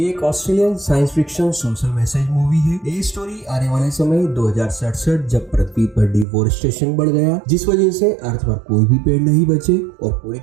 एक Australian science fiction social message movie है। ये स्टोरी आने वाले समय 2067 जब पृथ्वी पर डिफोरेस्टेशन बढ़ गया, जिस वजह से अर्थ पर कोई भी पेड़ नहीं बचे और पूरी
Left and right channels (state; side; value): drops out; left; at 6.2 s